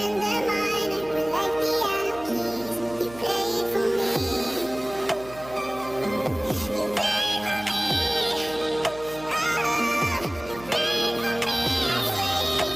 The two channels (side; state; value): right; noise; hum, 18 dB below the sound